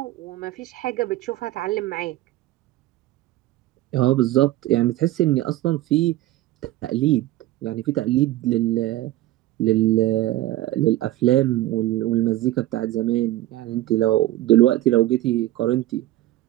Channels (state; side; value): quieter; left; 15.7 dB